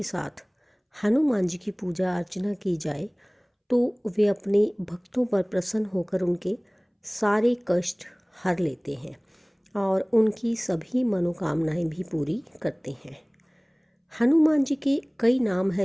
साथ हनुमान जी की पूजा अर्चना की जाए तो वे अपने भक्तों पर प्रसन्न होकर उनके सारे कष्ट हर लेते हैं और उनकी सभी मनोकामनाएं भी पूरी करते हैं। हनुमान जी के कई नाम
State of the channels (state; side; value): identical; both; correlation 1.00